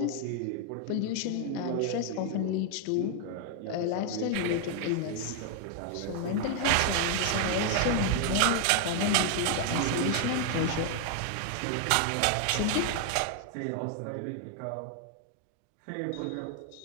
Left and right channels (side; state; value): both; different; correlation 0.00